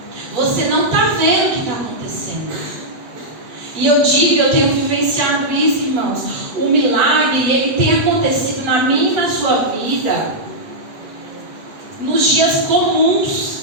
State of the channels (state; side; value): late; left; 8.0 ms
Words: Você não está vendo o que está acontecendo. E eu digo, eu tenho vivenciado isso, irmãos. O milagre, ele tem acontecido na minha e na sua vida nos dias comuns.